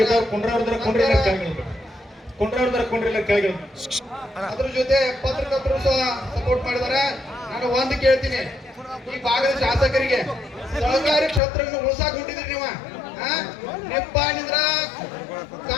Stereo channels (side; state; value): right; drops out; at 11.4 s